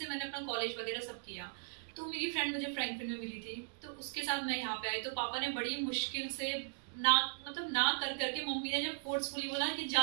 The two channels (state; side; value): silent; left; digital silence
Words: मैंने अपना कॉलेज वगैरह सब किया। तो मेरी फ्रेंड मुझे फ्रैंकफिन में मिली थी, तो उसके साथ मैं यहाँ पे आई। तो पापा ने बड़ी मुश्किल से ना कर करके मम्मी ने जब फोर्सफुली बोला कि